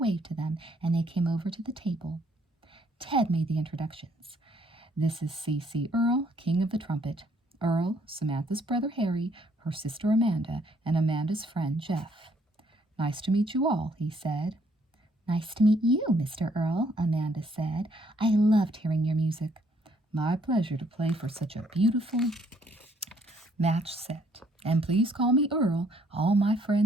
to them, and they came over to the table. Ted made the introductions. This is C.C. Earl, King of the Trumpet. Earl, Samantha's brother Harry, her sister Amanda, and Amanda's friend Jeff. Nice to meet you all, he said. Nice to meet you, Mr. Earl, Amanda said. I loved hearing your music. My pleasure to play for such a beautiful match set. And please call me Earl. All my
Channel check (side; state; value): both; normal; correlation 0.66